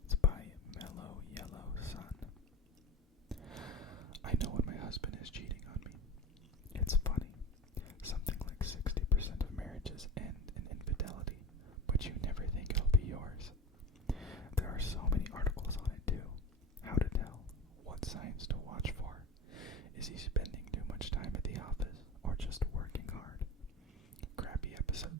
It's by Mellow Yellow Sun. I know when my husband is cheating on me. It's funny. Something like 60% of marriages end in infidelity, but you never think it'll be yours. There are so many articles on it too. How to tell, what signs to watch for. Is he spending too much time at the office or just working hard? Crappy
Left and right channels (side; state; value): both; normal; correlation 0.32